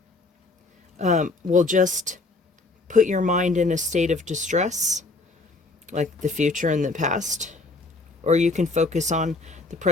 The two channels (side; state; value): right; quieter; 3.3 dB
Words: will just put your mind in a state of distress, like the future and the past, or you can focus on the